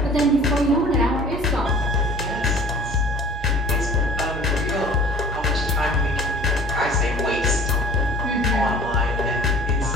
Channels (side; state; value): both; normal; correlation 0.47